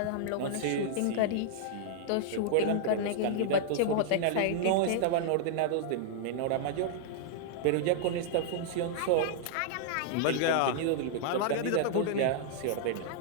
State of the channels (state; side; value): different; both; correlation -0.01